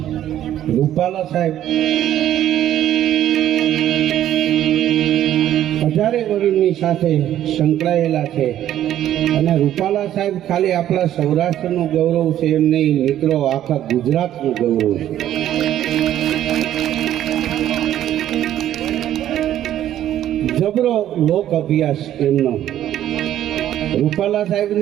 રૂપાલા સાહેબ 1000 વર્ષની સાથે સંકળાયેલા છે. અને રૂપાલા સાહેબ ખાલી આપણા સૌરાષ્ટ્રનું ગૌરવ છે એમ નહીં મિત્રો, આખા ગુજરાતનું ગૌરવ છે. જબરો લોક અભ્યાસ એમનો. રૂપાલા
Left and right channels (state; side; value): quieter; left; 11.9 dB